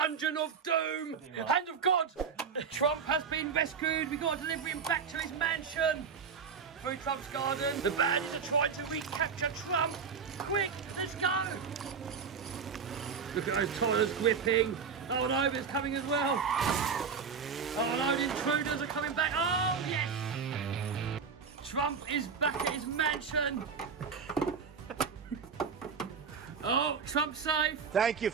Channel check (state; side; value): quieter; left; 6.0 dB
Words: of Doom. Hand of God! Trump has been rescued. We've got to deliver him back to his mansion. Through Trump's garden. The bandits are trying to recapture Trump. Quick, let's go! Look at those tyres gripping. Oh no, it's coming as well. Oh no, the intruders are coming back. Oh, yes! Trump is back at his mansion. Oh, Trump's safe. Thank you,